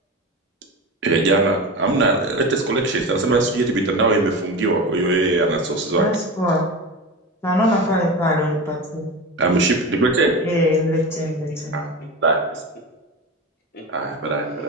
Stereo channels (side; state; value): both; normal; correlation 0.26